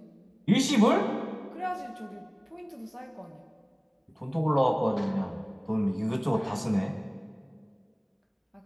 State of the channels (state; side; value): identical; both; correlation 1.00